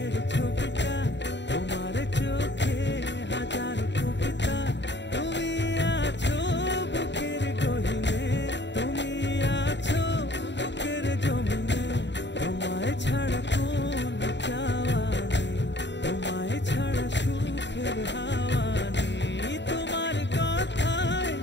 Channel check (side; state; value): right; late; 0.52 ms